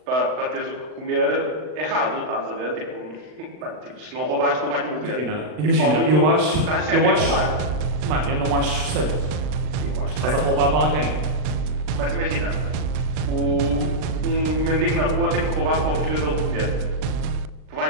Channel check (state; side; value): late; left; 39 ms